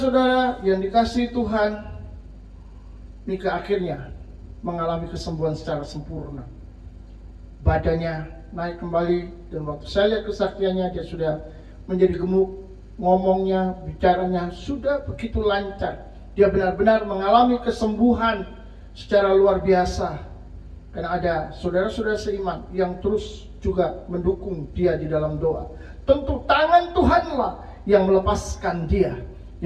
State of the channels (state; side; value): identical; both; correlation 1.00